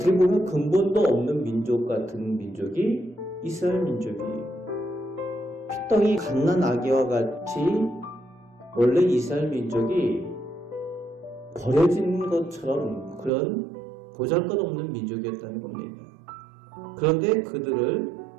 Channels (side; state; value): left; drops out; at 13.3 s